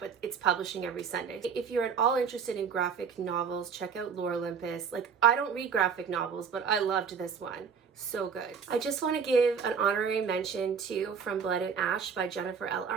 it's publishing every Sunday. If you're at all interested in graphic novels, check out Lore Olympus. Like, I don't read graphic novels, but I loved this one. So good. I just want to give an honorary mention to From Blood and Ash by Jennifer L.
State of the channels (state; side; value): quieter; left; 6.5 dB